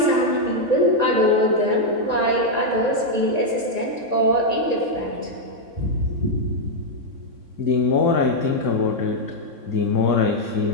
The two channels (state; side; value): late; left; 3.6 ms